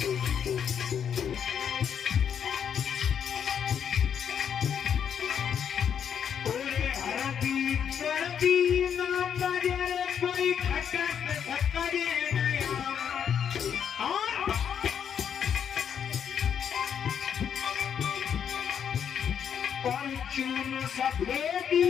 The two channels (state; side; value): quieter; right; 8.1 dB